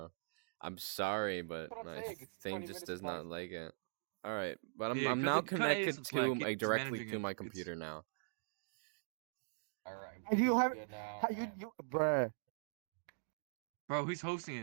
I'm sorry, but That's what I'm my saying, it's thing 20 just minutes does of not black like it. Alright, but Yeah, I'm cut now the- cut connected Ace Black. to He's directly managing to it. my It's- computer now. Alright. And you have- good now, How man. you, bruh. Bro, he's hosting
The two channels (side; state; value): left; silent; digital silence